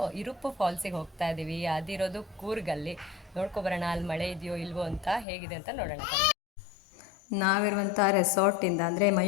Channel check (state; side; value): drops out; right; at 5.2 s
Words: ಇರುಪ್ಪು ಫಾಲ್ಸಿಗೆ ಹೋಗ್ತಾ ಇದ್ದೀವಿ. ಅದಿರೋದು ಕೂರ್ಗಲ್ಲಿ. ನೋಡ್ಕೊಬರೋಣ ಅಲ್ಲಿ ಮಳೆ ಇದೆಯೋ ಇಲ್ವೋ ಅಂತ, ಹೇಗಿದೆ ಅಂತ ನೋಡೋಣ. ನಾವಿರುವಂಥ ರೆಸಾರ್ಟಿಂದ ಅಂದರೆ